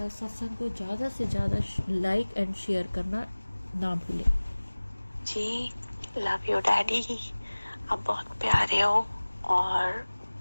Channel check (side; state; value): both; inverted; correlation -1.00